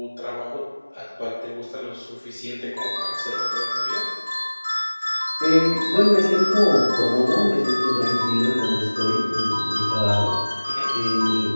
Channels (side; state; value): both; inverted; correlation -1.00